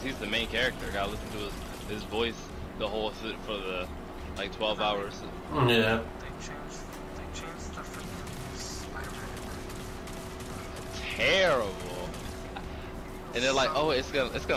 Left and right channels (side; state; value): both; identical; correlation 1.00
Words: he's the main character. I gotta listen to his voice the whole for the like 12 hours. Yeah. They changed the freaking Spider-Man. Terrible. And they're like, oh, it's